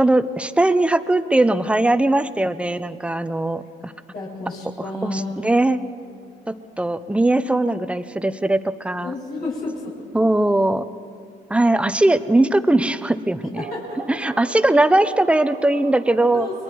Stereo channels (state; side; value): normal; both; correlation 0.92